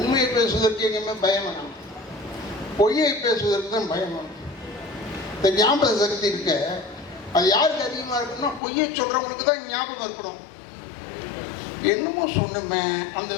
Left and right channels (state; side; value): drops out; right; at 8.6 s